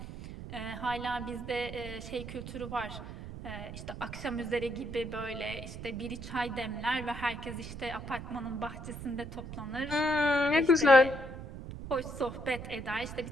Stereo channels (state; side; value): noise; right; rumble, 10 dB below the sound